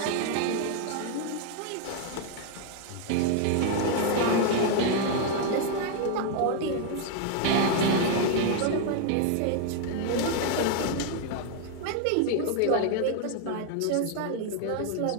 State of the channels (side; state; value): both; different; correlation 0.00